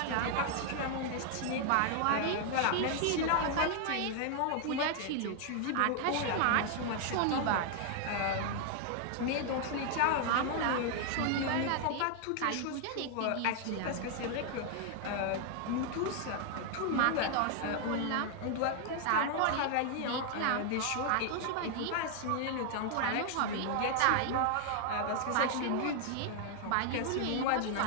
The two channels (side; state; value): both; different; correlation 0.00